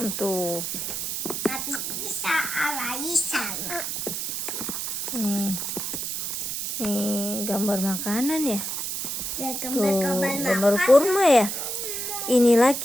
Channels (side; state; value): right; noise; hiss, 3 dB below the sound